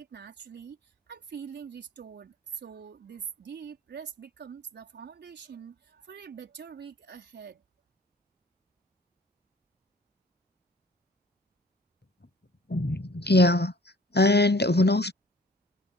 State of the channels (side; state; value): both; normal; correlation 0.52